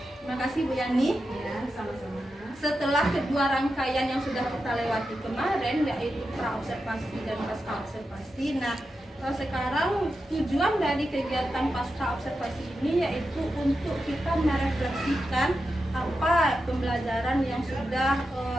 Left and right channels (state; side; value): normal; both; correlation 0.89